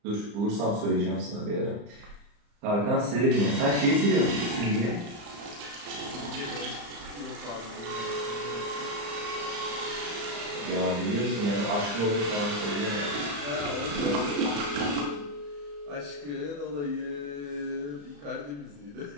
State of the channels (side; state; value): left; late; 35 ms